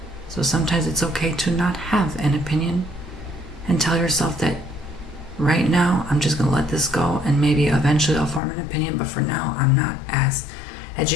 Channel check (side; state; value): right; drops out; at 8.4 s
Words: So sometimes it's okay to not have an opinion and tell yourself that right now I'm just going to let this go and maybe eventually I'll form an opinion, but for now I'm not as